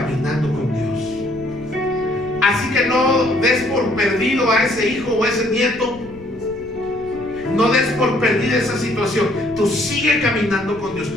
con Dios. Así que no des por perdido a ese hijo o a ese nieto, no des por perdida esa situación. Tú sigue caminando con Dios,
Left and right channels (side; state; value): left; noise; rumble, 20 dB below the sound